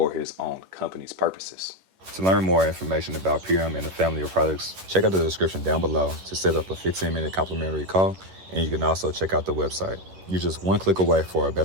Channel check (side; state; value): left; late; 11 ms